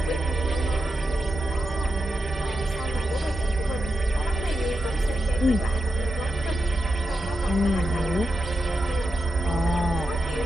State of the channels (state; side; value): normal; both; correlation 0.88